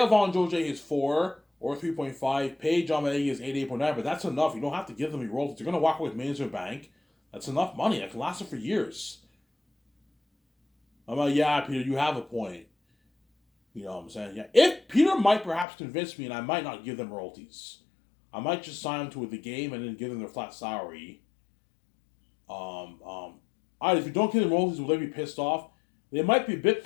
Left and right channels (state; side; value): drops out; right; at 15.7 s